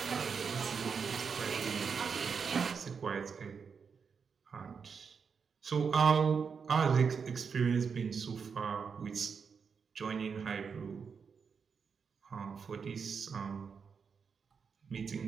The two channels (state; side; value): quieter; left; 6.0 dB